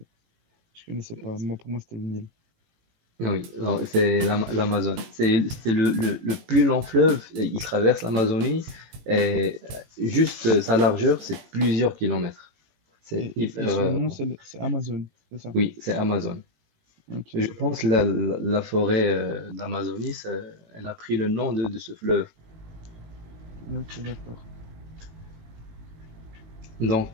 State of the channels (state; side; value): late; left; 18 ms